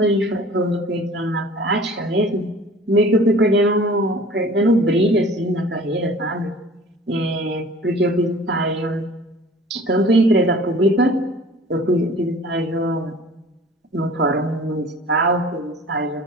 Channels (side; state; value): both; normal; correlation 0.46